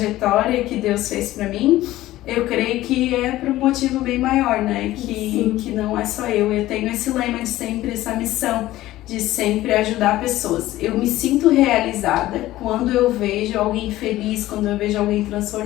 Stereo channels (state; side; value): quieter; right; 15.8 dB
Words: que Deus fez pra mim, eu creio que é por um motivo bem maior, né? Que não é só eu tenho esse lema de sempre, essa missão de sempre ajudar pessoas. Eu me sinto realizada quando eu vejo alguém feliz, quando eu vejo alguém